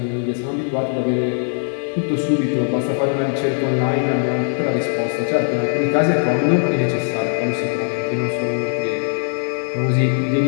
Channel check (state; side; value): silent; right; digital silence